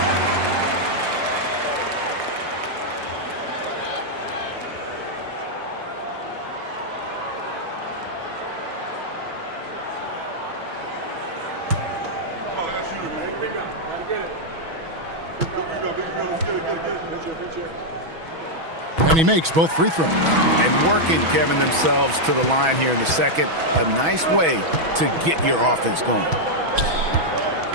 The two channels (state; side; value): late; left; 6.2 ms